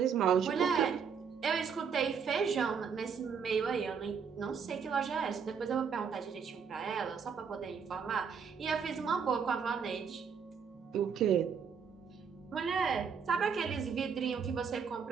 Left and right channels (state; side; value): quieter; left; 6.5 dB